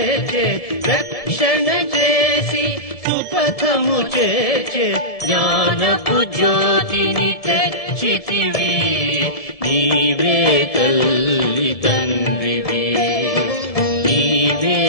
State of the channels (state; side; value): late; right; 1.7 ms